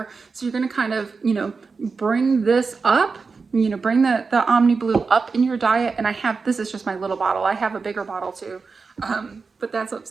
So you're going to kind of, bring this up, bring the Omniblue up in your diet. And this is just my little bottle. I have a bigger bottle too, but that's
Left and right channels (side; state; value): left; quieter; 4.7 dB